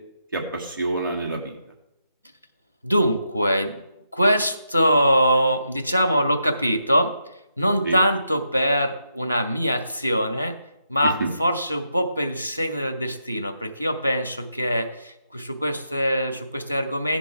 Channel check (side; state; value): both; inverted; correlation -0.81